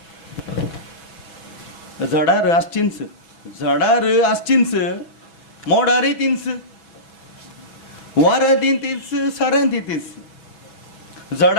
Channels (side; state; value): right; late; 6.1 ms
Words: झाडार आसचींच, झाडार आसचींच, मोडारय तिंच, वाऱ्या तिंच, साऱ्यां तिंच.